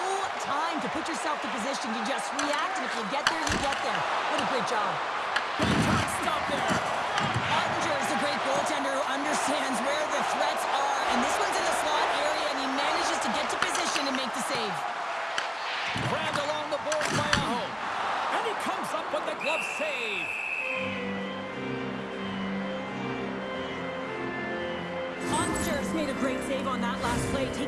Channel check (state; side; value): identical; both; correlation 1.00